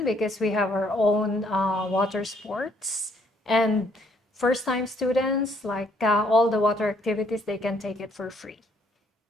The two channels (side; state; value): both; normal; correlation 0.67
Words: because we have our own water sports. And first-time students, like all the water activities, they can take it for free.